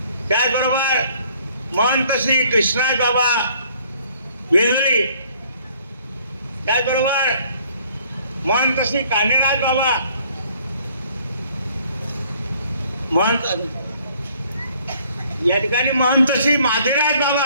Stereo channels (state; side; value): inverted; both; correlation -0.60